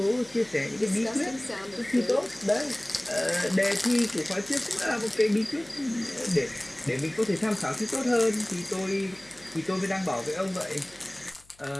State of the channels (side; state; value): left; noise; hum, 28 dB below the sound